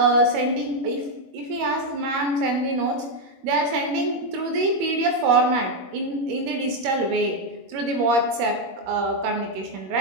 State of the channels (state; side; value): late; left; 21 ms